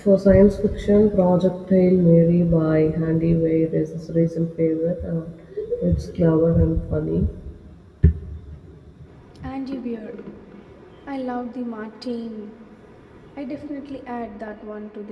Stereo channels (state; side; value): identical; both; correlation 1.00